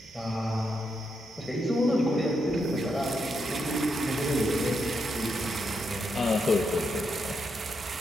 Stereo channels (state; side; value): normal; both; correlation 0.82